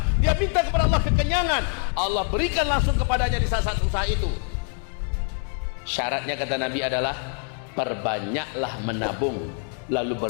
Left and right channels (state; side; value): quieter; right; 39.5 dB